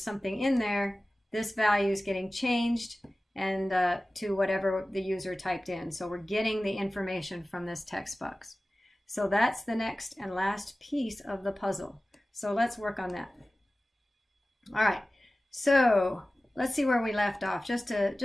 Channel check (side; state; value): both; normal; correlation 0.96